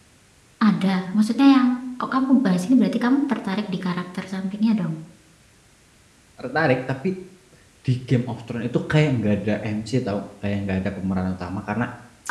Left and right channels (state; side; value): identical; both; correlation 1.00